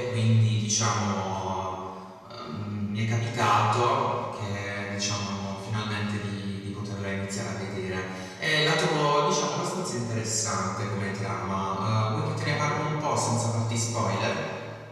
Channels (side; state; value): both; identical; correlation 1.00